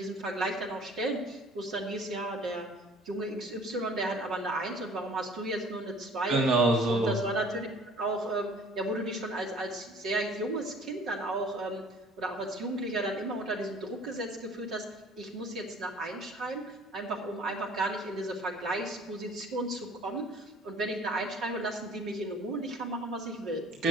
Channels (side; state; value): both; normal; correlation 0.51